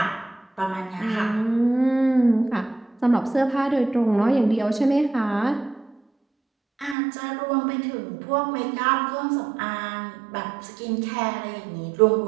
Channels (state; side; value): drops out; left; at 7.0 s